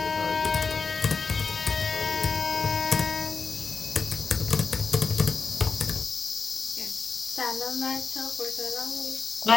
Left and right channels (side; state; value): right; quieter; 4.9 dB